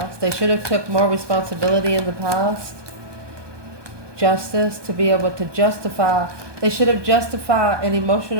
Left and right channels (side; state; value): left; late; 1.2 ms